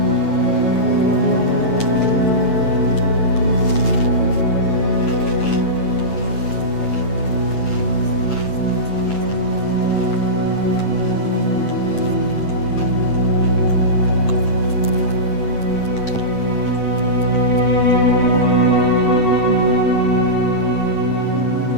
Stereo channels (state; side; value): late; right; 9.0 ms